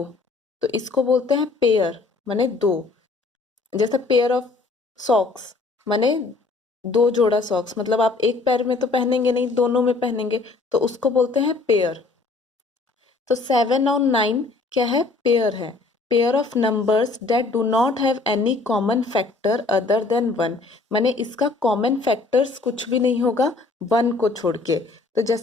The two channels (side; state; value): right; quieter; 3.7 dB